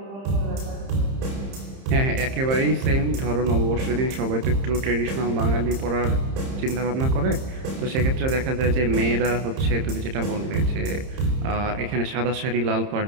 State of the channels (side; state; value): left; late; 30 ms